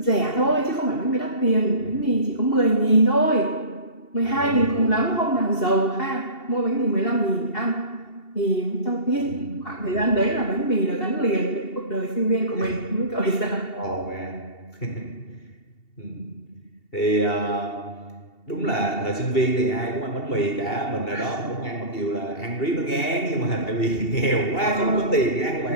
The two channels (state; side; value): late; right; 2.7 ms